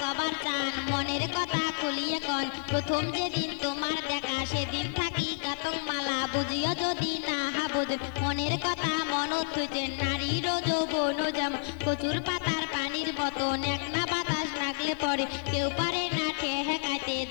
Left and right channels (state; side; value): silent; right; digital silence